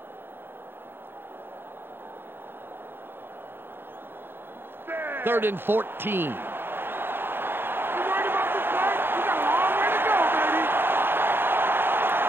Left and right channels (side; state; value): left; late; 0.10 ms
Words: Third and 14.